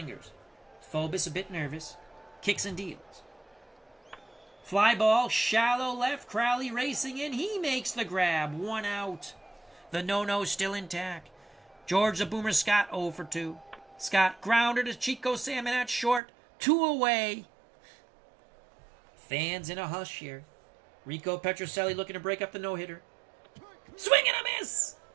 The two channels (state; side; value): drops out; left; at 16.2 s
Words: Phobos a bit nervous. Kicks and deals. Fly ball, shallow left. Crowley racing in. He makes the grab. 1 out. The no-no still intact. George the Boomer Scott 0 for 2. Scott grounder to Chico Salmon at short. 2 away. Fans in a hush here. Rico Petrocelli looking to break up the no-hitter. Swing and a miss!